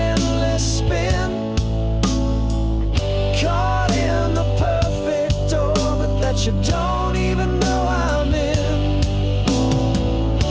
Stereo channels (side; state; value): both; identical; correlation 1.00